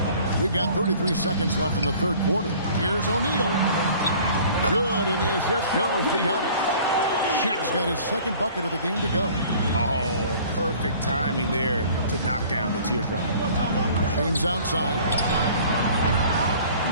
We've got 33 seconds left in the third quarter. Here's O'Neal. Good, and the assist goes to Giannis. Shaq's got his second bucket of the game to go. Oh, perfect timing there to knock down the teardrop. James outside.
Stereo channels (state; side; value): inverted; both; correlation -0.50